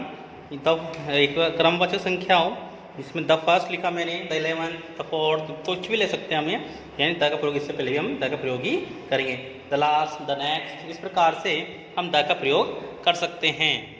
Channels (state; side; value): identical; both; correlation 1.00